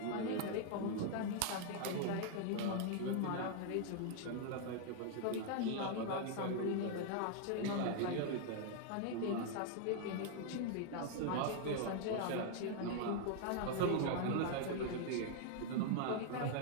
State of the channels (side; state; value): both; different; correlation 0.00